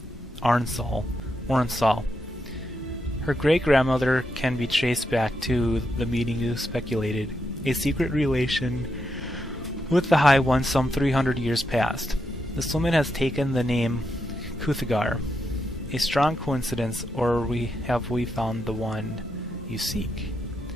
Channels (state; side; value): normal; both; correlation 0.83